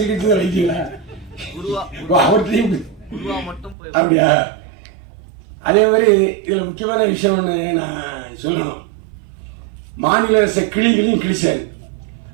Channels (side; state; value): left; drops out; at 3.8 s